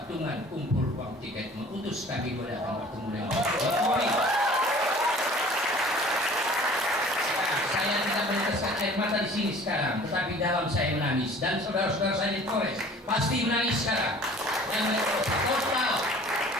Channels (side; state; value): both; normal; correlation 0.48